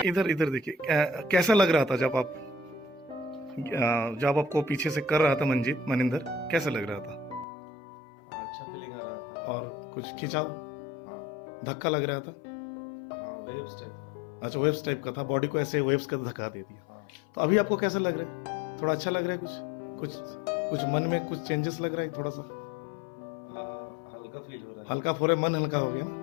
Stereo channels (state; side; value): drops out; right; at 7.5 s